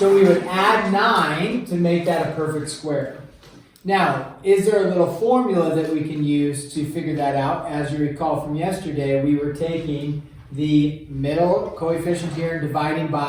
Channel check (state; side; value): identical; both; correlation 1.00